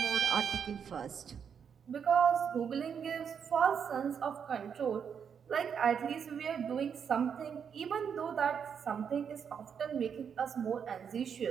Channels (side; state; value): left; quieter; 7.2 dB